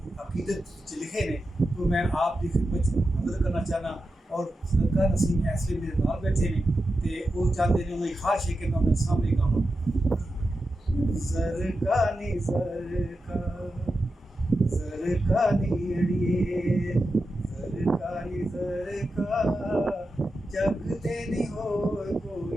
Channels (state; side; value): normal; both; correlation 0.90